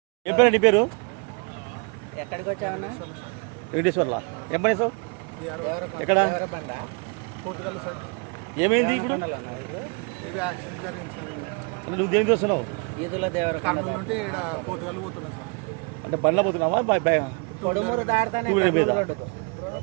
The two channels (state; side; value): quieter; left; 33.8 dB